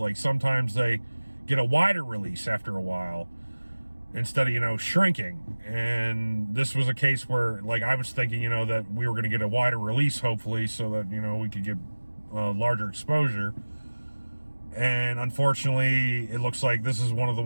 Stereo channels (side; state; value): both; inverted; correlation -1.00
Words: sometimes they get a wider release after a while instead of shrinking. And this was a case where I was thinking that we were going to get a wider release, hopefully, so that we could get larger exposure. And unfortunately, it looks like this is one of the